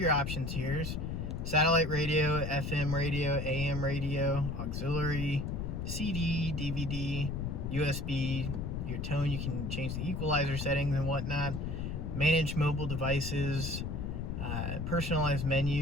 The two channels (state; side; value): noise; left; rumble, 3 dB below the sound